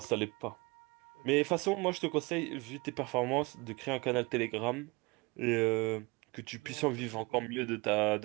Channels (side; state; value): left; quieter; 25.8 dB